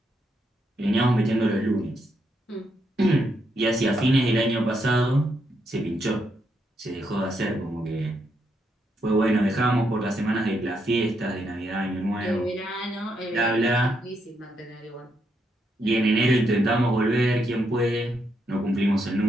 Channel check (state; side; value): normal; both; correlation 0.78